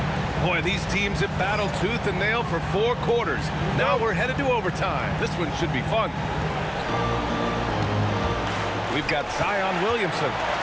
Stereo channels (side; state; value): both; identical; correlation 1.00